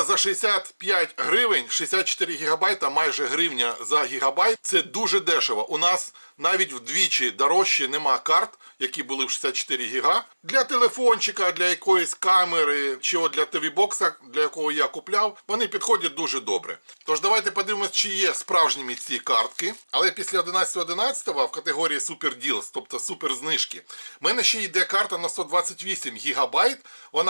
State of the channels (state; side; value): inverted; both; correlation -1.00